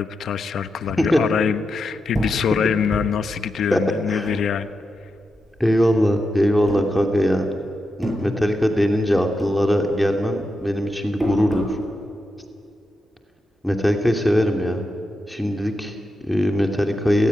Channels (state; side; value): normal; both; correlation 0.87